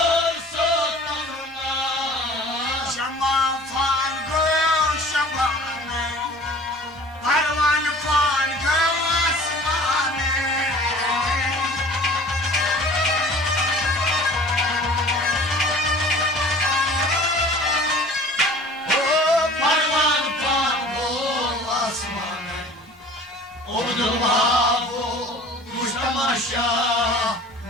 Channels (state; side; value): normal; both; correlation 0.46